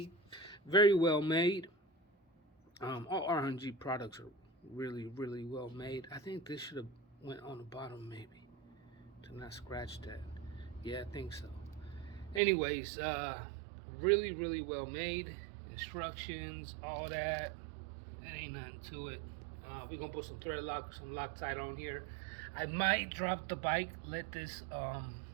Very well made. All R&G products are really, really well made. I think this should have went on the bottom, maybe, to not scratch that. Yeah, I think so. Anyways, really, really well made. Instructions, all that. That ain't nothing to it. We're gonna put some thread lock, some Loctite on here. I might drop the bike, let this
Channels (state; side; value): drops out; left; at 12.4 s